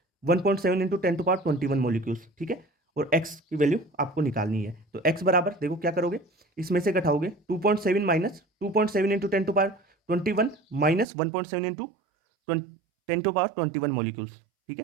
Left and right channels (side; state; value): left; drops out; at 11.1 s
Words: 1.7 इंटू 10 टू पावर 21 मोलिक्यूल्स। ठीक है, और एक्स की वैल्यू आपको निकालनी है, तो एक्स बराबर देखो क्या करोगे, इसमें से घटाओगे 2.7 minus 2.7 into 10 to power 21 minus 1.7 into 10 to power 21 molecules. ठीक है,